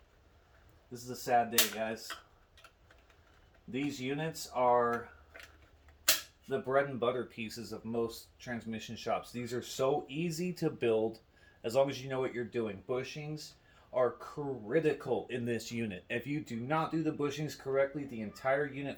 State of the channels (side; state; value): both; identical; correlation 1.00